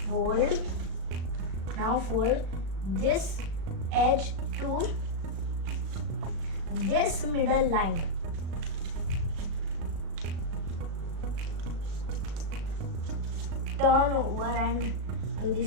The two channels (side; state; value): left; late; 36 ms